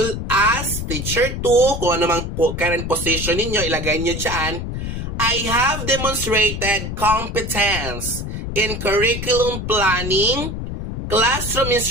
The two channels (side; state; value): left; noise; rumble, 5 dB below the sound